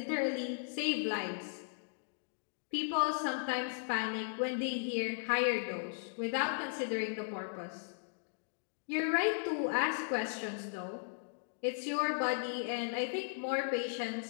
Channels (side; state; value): right; silent; digital silence